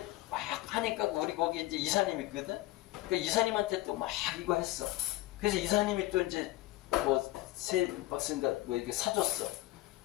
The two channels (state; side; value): quieter; right; 17.8 dB